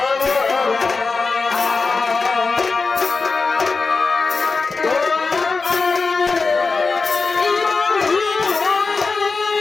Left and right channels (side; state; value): right; quieter; 4.3 dB